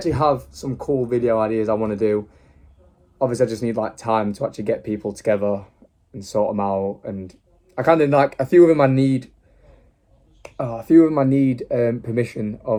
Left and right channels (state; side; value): identical; both; correlation 1.00